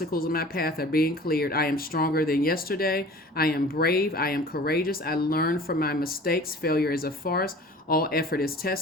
in my path are being cleared. I am stronger than yesterday. I am brave. I am courageous. I learn from my mistakes. Failure is a farce. All effort is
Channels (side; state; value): both; normal; correlation 0.44